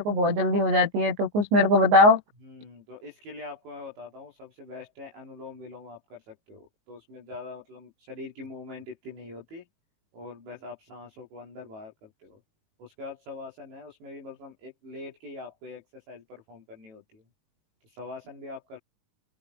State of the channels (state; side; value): late; left; 19 ms